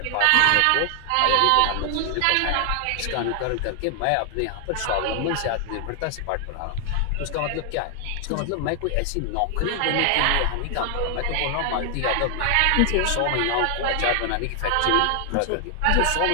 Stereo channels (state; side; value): different; both; correlation 0.00